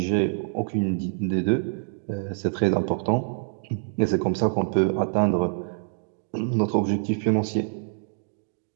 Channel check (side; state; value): left; silent; digital silence